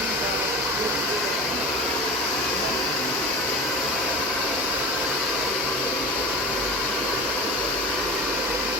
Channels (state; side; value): normal; both; correlation 0.32